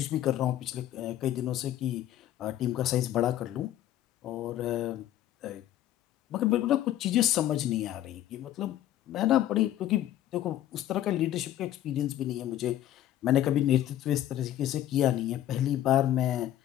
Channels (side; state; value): right; quieter; 12.6 dB